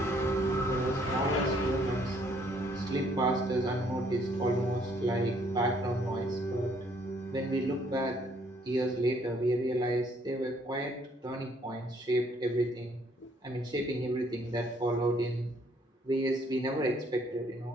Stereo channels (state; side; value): normal; both; correlation 0.65